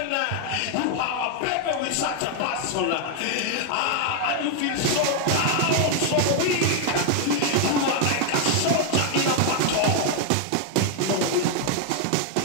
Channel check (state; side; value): different; both; correlation 0.01